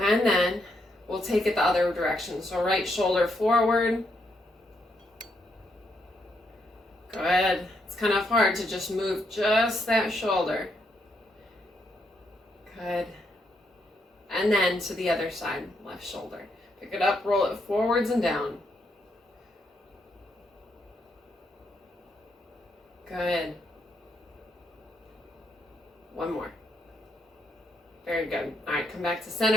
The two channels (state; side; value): normal; both; correlation 0.77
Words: then we'll take it the other direction. So right shoulder forward. Good. It's kind of hard to just move just that shoulder. Good. And then to the other side, left shoulder. Pick it up, roll it forwards and down. Good. One more. Very good. All right, come back to